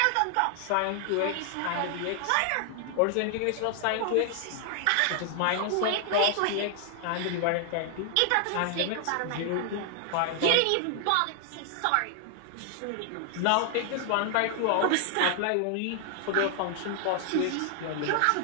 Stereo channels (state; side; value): different; both; correlation 0.00